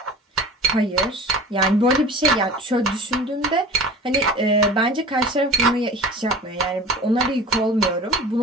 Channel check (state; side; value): normal; both; correlation 0.38